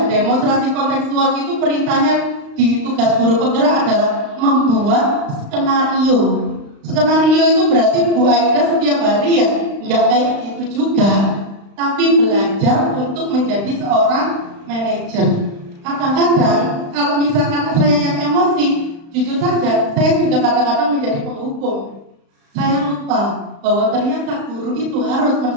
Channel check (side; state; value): left; late; 35 ms